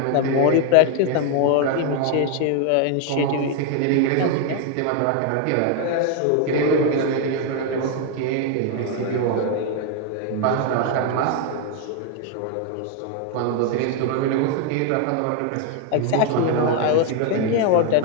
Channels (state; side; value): different; both; correlation 0.01